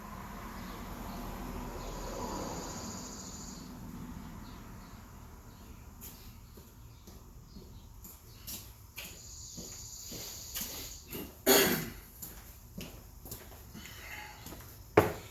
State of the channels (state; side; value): identical; both; correlation 1.00